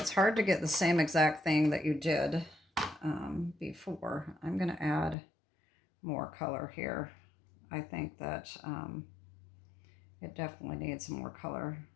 hard to get the same exact thing that you did before. I'm going to add more color here. I think that it definitely needs some more color.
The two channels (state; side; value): drops out; right; at 5.2 s